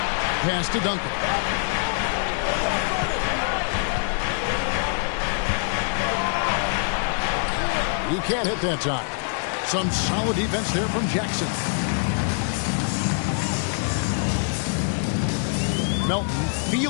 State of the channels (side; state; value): right; silent; digital silence